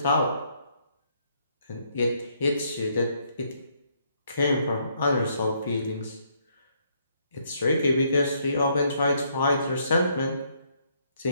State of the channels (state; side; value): inverted; both; correlation -0.71